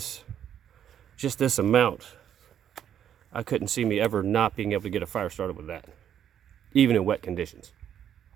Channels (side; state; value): left; quieter; 9.6 dB